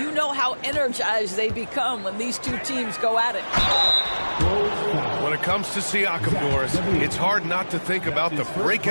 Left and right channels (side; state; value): both; inverted; correlation -1.00